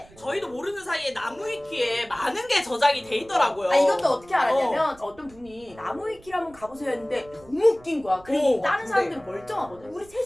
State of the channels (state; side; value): noise; right; rumble, 24 dB below the sound